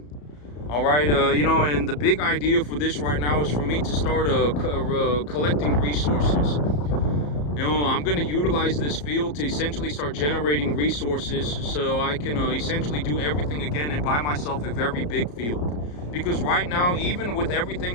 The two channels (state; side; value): late; right; 34 ms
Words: All right, and the big idea for this right now is for me to start collecting resources. I'm going to utilize this field to essentially start generating resources so I can essentially do everything again and buy myself a very big field. Because right now, even with